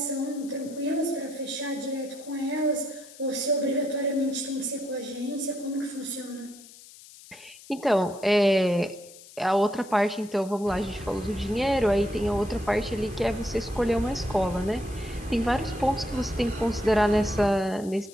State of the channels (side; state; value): left; noise; hiss, 20 dB below the sound